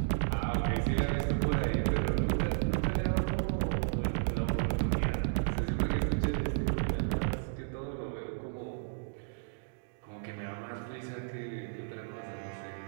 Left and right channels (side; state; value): left; silent; digital silence